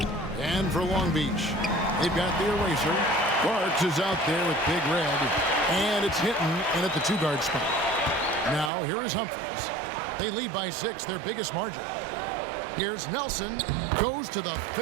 And for Long Beach, they've got the Eraser. Parks is out there with Big Red, and it's hitting in at the 2-guard spot. Now, here is Humphries. They lead by 6, their biggest margin. Here's Nelson, goes to the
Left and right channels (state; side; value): drops out; left; at 8.7 s